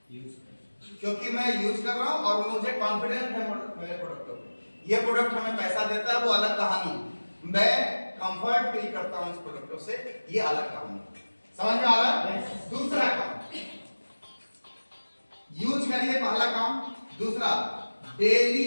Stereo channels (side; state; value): both; inverted; correlation -1.00